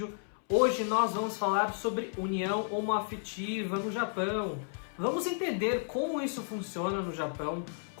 Hoje nós vamos falar sobre união homoafetiva no Japão. Vamos entender como isso funciona no Japão,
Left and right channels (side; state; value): right; silent; 56 dB below the other